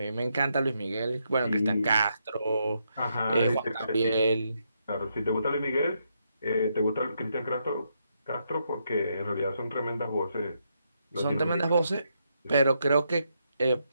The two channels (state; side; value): inverted; both; correlation -0.79